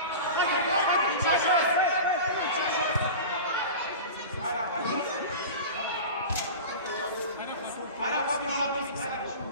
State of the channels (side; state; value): both; inverted; correlation -0.31